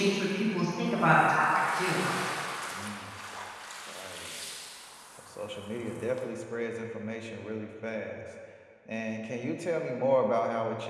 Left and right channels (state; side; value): identical; both; correlation 1.00